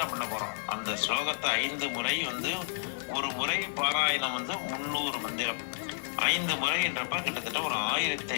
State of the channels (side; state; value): right; silent; 57 dB below the other